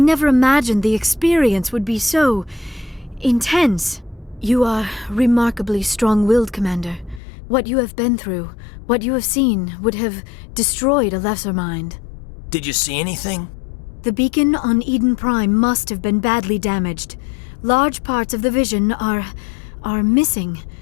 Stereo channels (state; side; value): drops out; right; at 7.2 s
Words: never imagined the experience would be so intense. You are remarkably strong-willed, Commander. What you have been through, what you have seen, would have destroyed a lesser mind. Did you see anything? The beacon on Eden Prime must have been badly damaged. Large parts of the vision are missing.